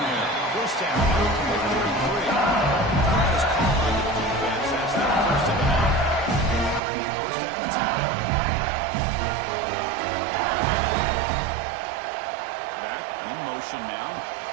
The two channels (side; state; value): left; drops out; at 6.8 s